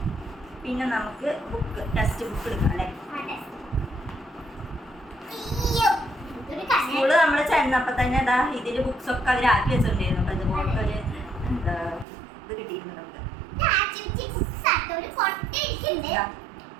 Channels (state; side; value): drops out; left; at 12.1 s